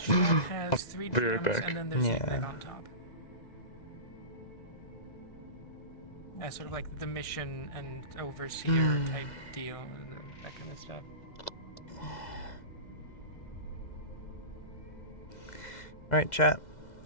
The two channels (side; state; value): right; late; 2.0 ms